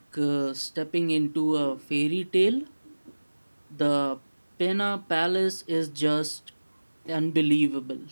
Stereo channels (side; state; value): both; inverted; correlation -1.00